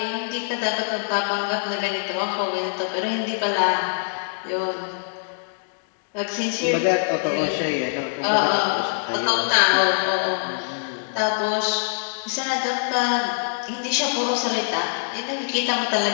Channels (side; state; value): right; silent; 63 dB below the other